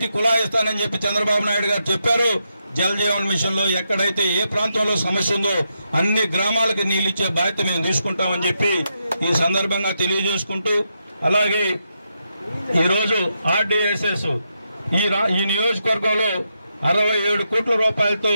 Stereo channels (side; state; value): both; inverted; correlation -0.83